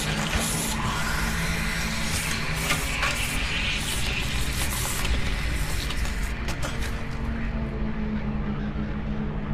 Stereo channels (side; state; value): both; identical; correlation 1.00